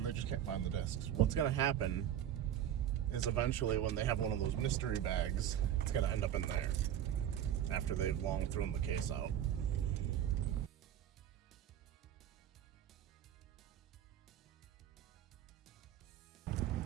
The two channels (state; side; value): quieter; left; 10.6 dB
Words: they just can't find the discs. What's gonna happen is eventually when they have one of those mystery bags, it's gonna end up in there after they've long thrown the case out.